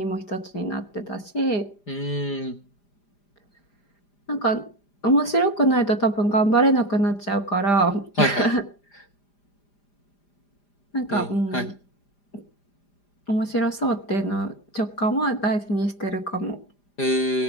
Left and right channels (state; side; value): late; right; 5.0 ms